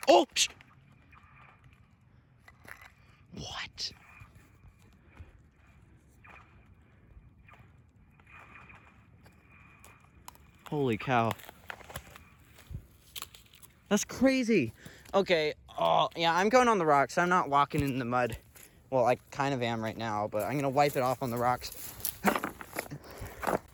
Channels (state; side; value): identical; both; correlation 1.00